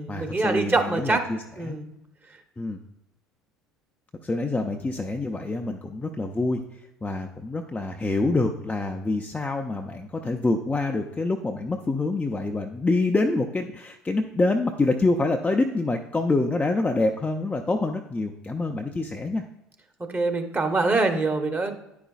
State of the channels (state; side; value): normal; both; correlation 0.82